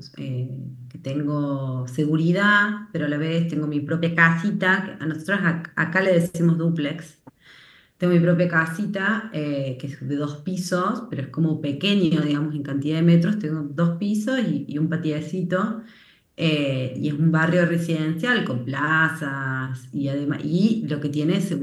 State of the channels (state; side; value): identical; both; correlation 1.00